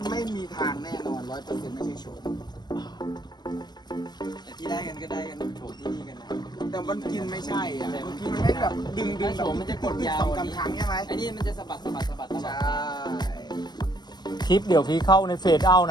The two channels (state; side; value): late; right; 0.20 ms